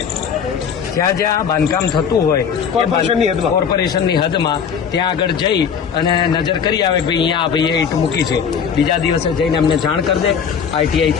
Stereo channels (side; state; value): right; quieter; 7.1 dB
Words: જ્યાં જ્યાં બાંધકામ થતું હોય કોર્પોરેશનની હદમાં ત્યાં આગળ જઈ અને નજર કરી આવે, ભાઈ અહીંયા આ ભાઈએ ઈંટ મૂકી છે, બીજા દિવસે જઈને અમને જાણ કરી દે, આઈટીઆઈ